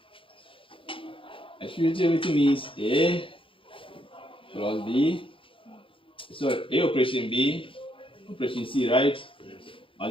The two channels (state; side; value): late; right; 0.25 ms